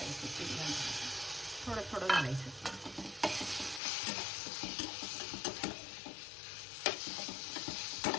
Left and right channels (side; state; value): right; drops out; at 3.8 s